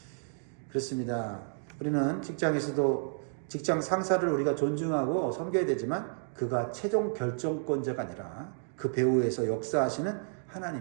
그렇습니다. 우리는 직장에서도 직장 상사를 우리가 존중하고 섬겨야 되지만 그가 최종 결정권자가 아니라 그 배후에서 역사하시는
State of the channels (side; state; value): left; silent; digital silence